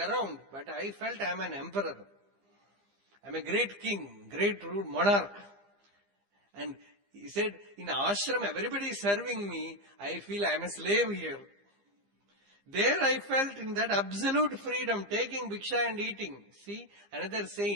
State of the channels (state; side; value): late; left; 15 ms